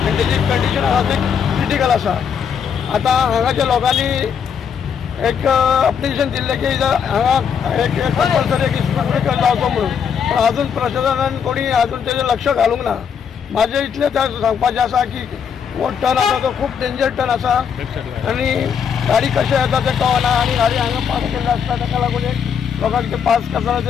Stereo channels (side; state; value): right; quieter; 7.3 dB